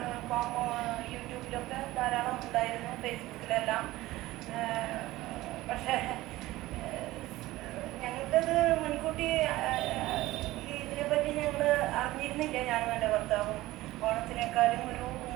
യൂട്യൂബിലൊക്കെ ധാരാളം ഉണ്ടായിരുന്നു, ഫേസ്ബുക്കിലെല്ലാം. പക്ഷേ ഞങ്ങൾക്കത് മുൻകൂട്ടി ഇതിനെപ്പറ്റി ഞങ്ങൾ അറിഞ്ഞിരുന്നില്ല. ഞാനും എൻ്റെ ഭർത്താവും ഓണത്തിനേക്കാളും ഒരു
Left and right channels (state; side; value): quieter; left; 17.6 dB